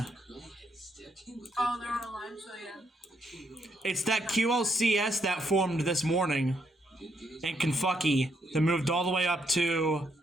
Oh, they're on a line, so yeah. It's that QLCS that formed this morning in Kentucky that moved all the way up to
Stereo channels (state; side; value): normal; both; correlation 0.76